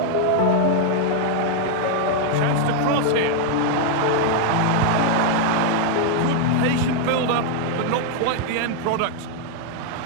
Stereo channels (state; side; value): different; both; correlation 0.00